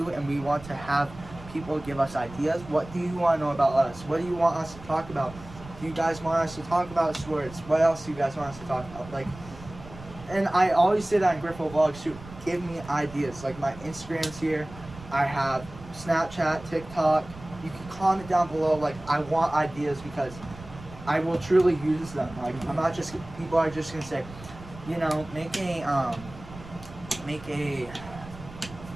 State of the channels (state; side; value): noise; right; rumble, 16 dB below the sound